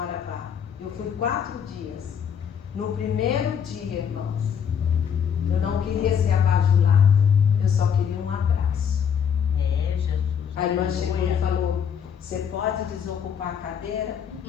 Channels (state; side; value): quieter; right; 7.7 dB